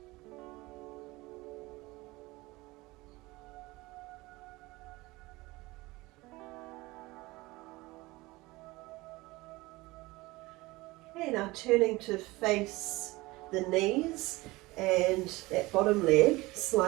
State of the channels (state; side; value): quieter; left; 21.1 dB